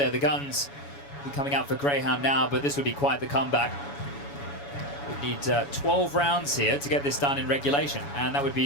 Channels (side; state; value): right; late; 7.1 ms